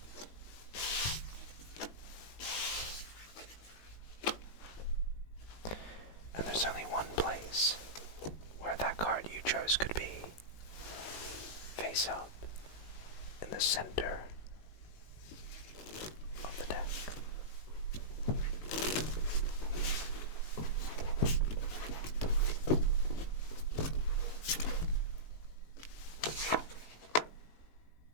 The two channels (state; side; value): late; right; 19 ms